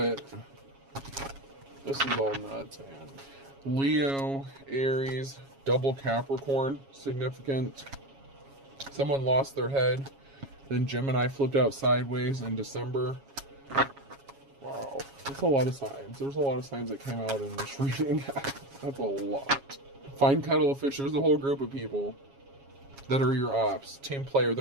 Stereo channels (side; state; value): left; late; 7.3 ms